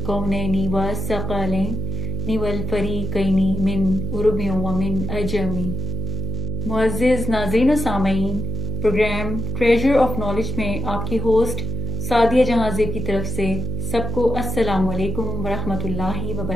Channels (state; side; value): noise; right; hum, 3 dB below the sound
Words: والثقلین والفریقین من عرب ومن عجم۔ معزز ناظرین و سامعین، پروگرام ٹریجر آف نالج میں آپ کی ہوسٹ سعدیہ جہاں زیب کی طرف سے سب کو السلام علیکم ورحمۃ اللہ